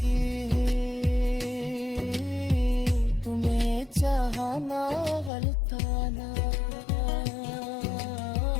तुम्हें चाहना गलताना,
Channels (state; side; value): drops out; right; at 5.3 s